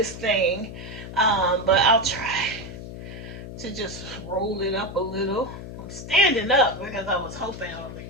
thing. But I'll try to just roll it up a little. I'm standing up because I was hoping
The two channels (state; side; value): noise; left; hum, 11 dB below the sound